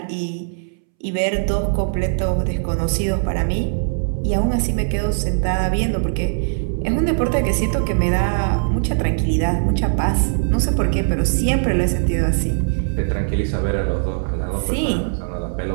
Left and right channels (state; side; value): silent; left; 66 dB below the other